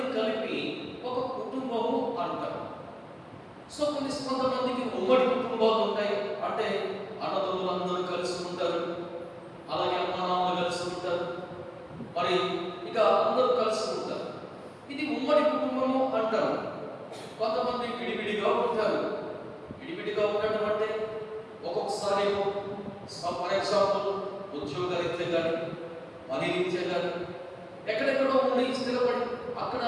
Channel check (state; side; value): identical; both; correlation 1.00